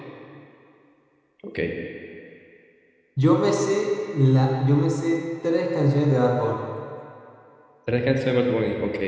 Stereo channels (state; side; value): identical; both; correlation 1.00